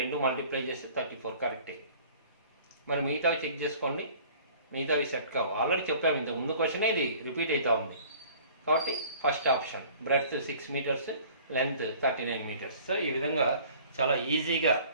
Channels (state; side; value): inverted; both; correlation -0.49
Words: మల్టిప్లై చేస్తే 34 కరెక్టే. మరి మిగతావి చెక్ చేసుకోండి, మిగతావి సెట్ కావు. ఆల్రెడీ చెప్పాము, ఇంత ముందు క్వశ్చన్ ఇది రిపీట్ అవుతూ ఉంది. కాబట్టి first option breadth 6 metres, length 39 metres. So ఈ విధంగా చాలా ఈజీగా